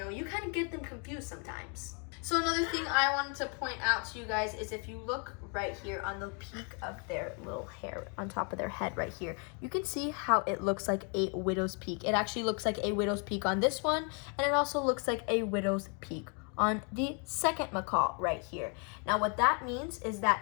kind of get them confused sometimes. So another thing I wanted to point out to you guys is if you look right here on the peak of their little hair on top of their head right here, you can see how it looks like a widow's peak. It actually looks like a widow's peak on this one, and it also looks like a widow's peak on the second macaw right here. Now, what that means is that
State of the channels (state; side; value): quieter; right; 37.5 dB